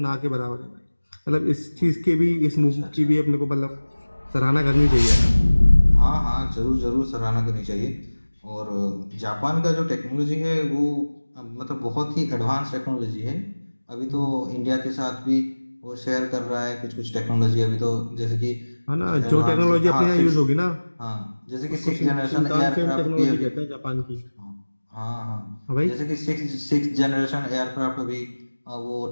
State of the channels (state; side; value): inverted; both; correlation -1.00